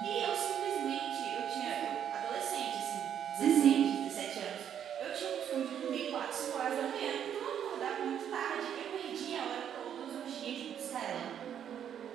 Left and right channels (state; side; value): quieter; left; 9.2 dB